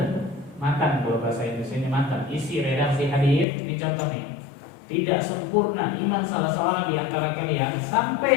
Matan kalau bahasa Indonesia matan. Isi redaksi hadis. Ini contoh nih. Tidak sempurna iman salah seorang di antara kalian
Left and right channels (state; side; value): drops out; right; at 3.5 s